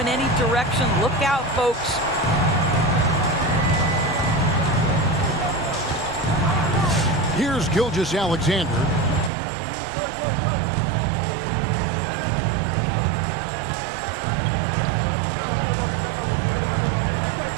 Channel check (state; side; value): drops out; left; at 9.3 s